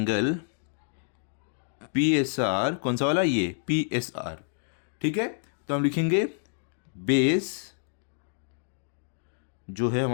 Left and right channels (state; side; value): silent; right; digital silence